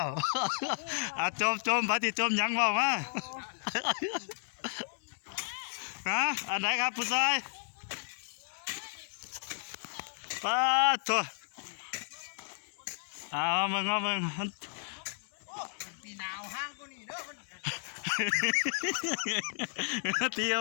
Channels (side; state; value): right; silent; 56 dB below the other